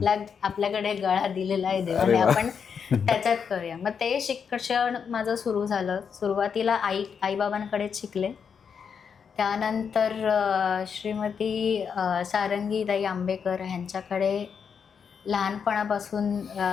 आपल्याकडे गळा दिलेला आहे देवाने, अरे वा. आपण त्याच्यात करूया. मग ते शिक्षण माझं सुरू झालं. सुरुवातीला आईबाबांकडेच शिकले. त्यानंतर श्रीमती सारंगीताई आंबेकर ह्यांच्याकडे लहानपणापासून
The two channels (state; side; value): quieter; right; 6.7 dB